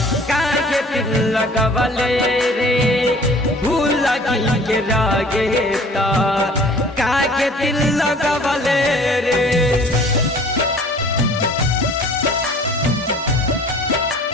काहे दिल लगवले रे। भूल के रहेता काहे दिल लगवले रे।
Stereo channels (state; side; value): normal; both; correlation 0.49